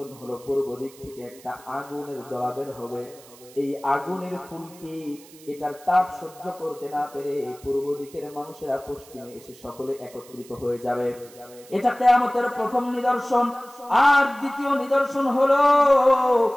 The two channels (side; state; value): right; noise; hiss, 22 dB below the sound